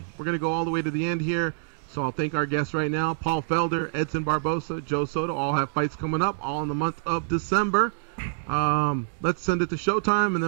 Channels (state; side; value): silent; left; digital silence